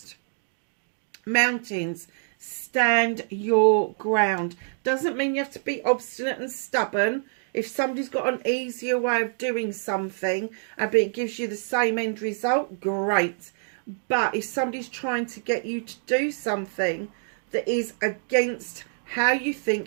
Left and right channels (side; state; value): left; silent; 61 dB below the other